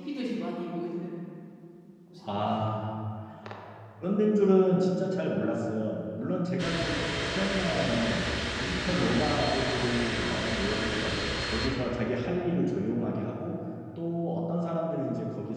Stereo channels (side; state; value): both; identical; correlation 1.00